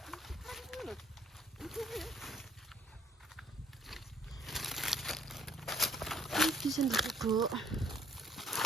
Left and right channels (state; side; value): normal; both; correlation 0.62